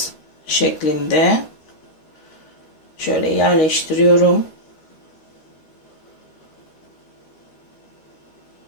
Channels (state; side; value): late; right; 13 ms